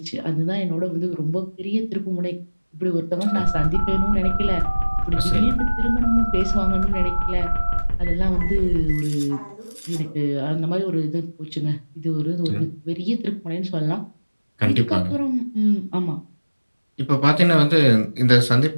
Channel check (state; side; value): inverted; both; correlation -1.00